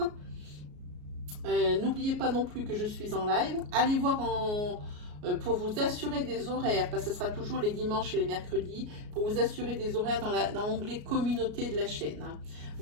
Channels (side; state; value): left; late; 33 ms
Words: N'oubliez pas non plus que je suis en live. Allez voir pour vous assurer des horaires, parce que ce sera toujours les dimanches et les mercredis, pour vous assurer des horaires dans l'onglet communauté de la chaîne. Hein.